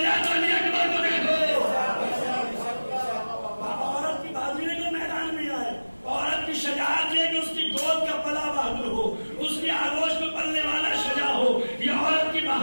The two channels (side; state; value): both; inverted; correlation -1.00